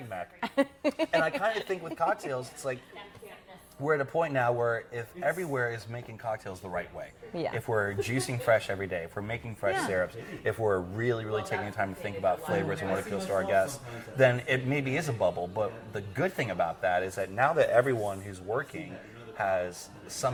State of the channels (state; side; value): identical; both; correlation 1.00